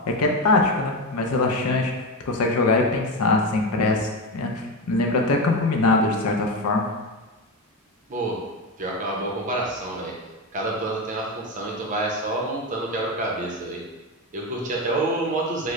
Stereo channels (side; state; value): both; normal; correlation 0.16